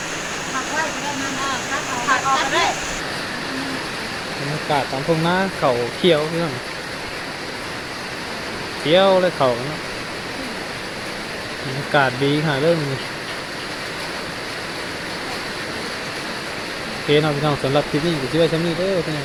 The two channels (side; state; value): both; identical; correlation 1.00